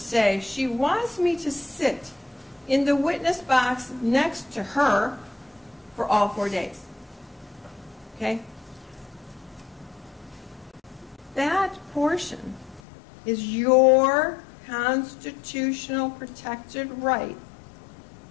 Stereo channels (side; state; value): right; drops out; at 12.8 s